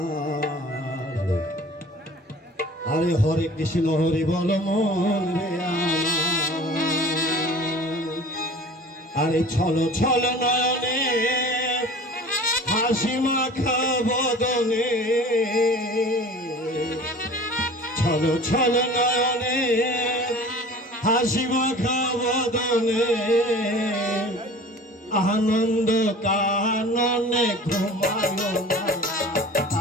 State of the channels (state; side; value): normal; both; correlation 0.43